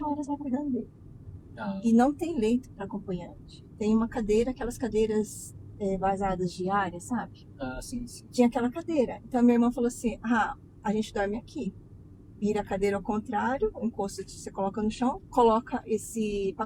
horas lá cuidando dele. E não tem leito para acompanhante. Tem uma cadeira, aquelas cadeiras vazadas diárias, sabe? Ah, sim, sim. Tinha aquela cadeira. Então a minha irmã falou assim: ah, a gente dorme aqui. Vira a cadeira ao contrário, o encosto você coloca no chão, coloca esse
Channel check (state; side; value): identical; both; correlation 1.00